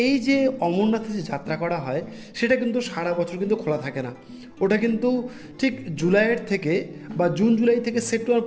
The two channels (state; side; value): identical; both; correlation 1.00